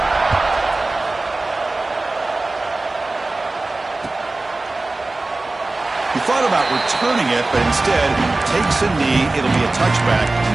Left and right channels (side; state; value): left; quieter; 3.1 dB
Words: He thought about returning it, but instead takes a knee. It'll be a touchback,